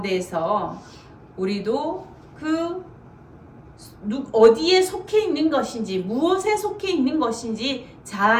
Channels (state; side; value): identical; both; correlation 1.00